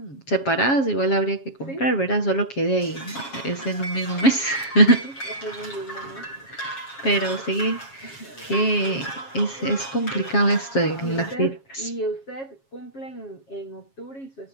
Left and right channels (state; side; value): late; right; 7.3 ms